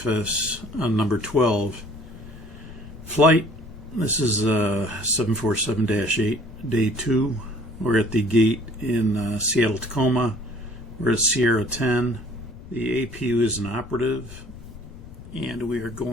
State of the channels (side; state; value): left; noise; rumble, 16 dB below the sound